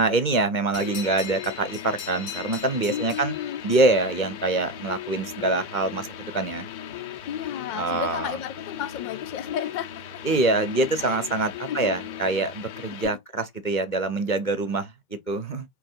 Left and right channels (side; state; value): right; late; 2.1 ms